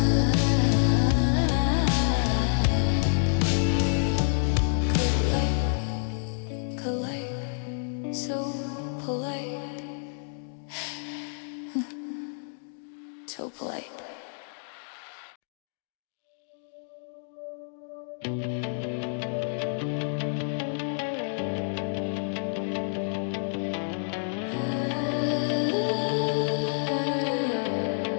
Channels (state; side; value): silent; right; digital silence